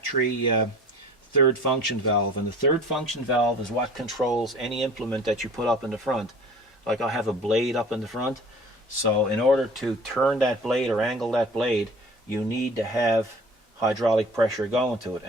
third function valve, and the third function valve is what controls any implement that you put up in the front. Like I have a blade up in the front, so in order to turn that blade or angle that blade, you need to have hydraulic pressure going to it,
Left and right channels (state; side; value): normal; both; correlation 0.45